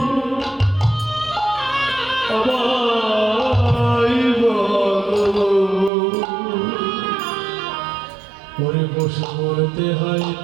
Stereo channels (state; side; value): drops out; left; at 5.9 s